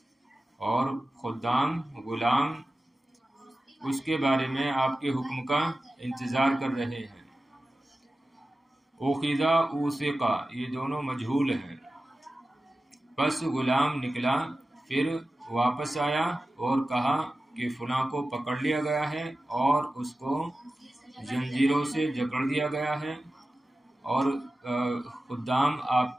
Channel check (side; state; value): both; normal; correlation 0.95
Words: اور خدام غلام اس کے بارے میں آپ کے حکم کا انتظار کر رہے ہیں۔ اخذا اوثقا یہ دونوں مجہول ہیں۔ پس غلام نکلا، پھر واپس آیا اور کہا کہ فلاں کو پکڑ لیا گیا ہے اور اس کو زنجیروں سے جکڑ دیا گیا ہے، اور خدام